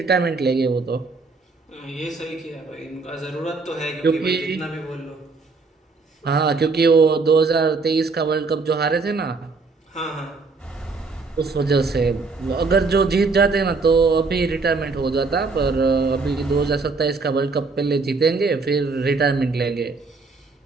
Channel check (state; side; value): quieter; left; 4.1 dB